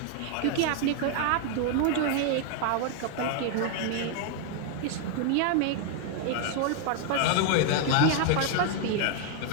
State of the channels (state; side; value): different; both; correlation 0.00